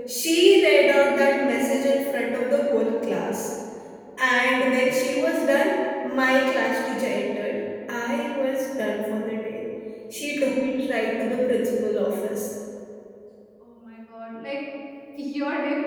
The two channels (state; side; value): identical; both; correlation 1.00